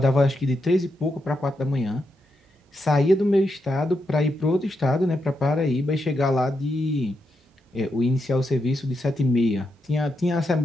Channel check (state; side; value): normal; both; correlation 0.84